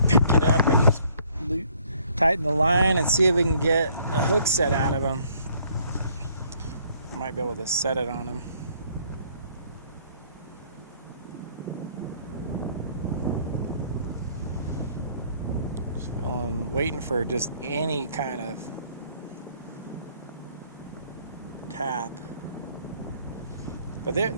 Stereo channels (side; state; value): both; inverted; correlation -0.62